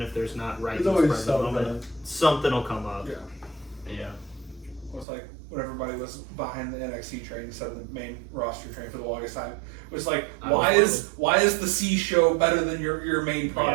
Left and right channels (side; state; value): left; drops out; at 5.1 s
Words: if there's not right There's always present moment, something will come up. Yeah. Yeah. It was like when everybody was behind the NXT train instead of the main roster train for the longest time. It was like, why is the C show better than your main